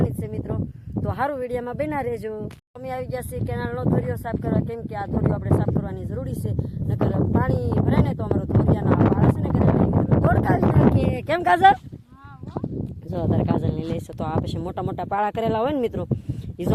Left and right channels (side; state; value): both; identical; correlation 1.00